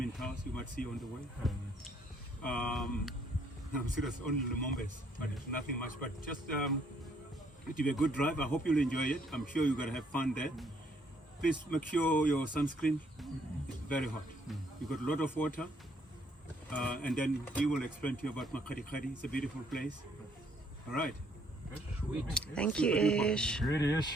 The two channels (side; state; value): both; normal; correlation 0.67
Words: you might see on the way. I'm serious, only Lumombes, but nothing much. But just it will be a good drive. I hope you'll enjoy it. I'm sure you're gonna have fun there. Please make sure your sunscreen is very hot. You've got a lot of water. And then he will explain to you about Makgadikgadi. It's a beautiful place. All right. Sweet. Thank you, Ish. Good